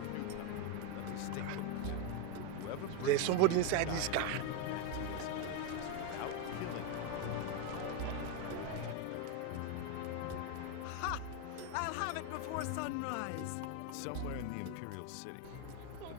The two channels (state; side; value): different; both; correlation 0.02